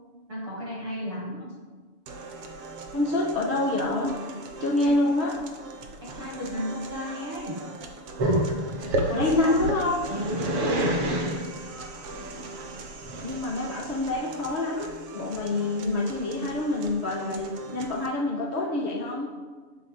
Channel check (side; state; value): left; late; 7.0 ms